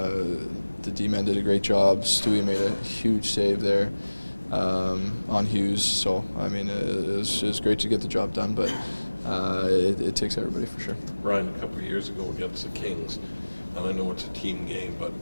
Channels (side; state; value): both; inverted; correlation -1.00